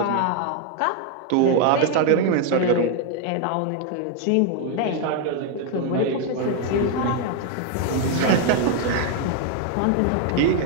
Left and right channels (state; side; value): different; both; correlation 0.01